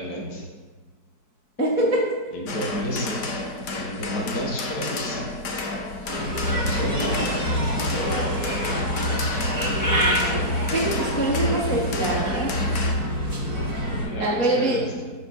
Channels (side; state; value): right; late; 4.6 ms